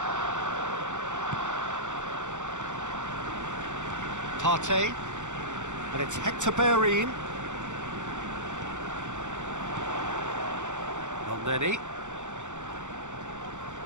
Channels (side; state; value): left; late; 0.85 ms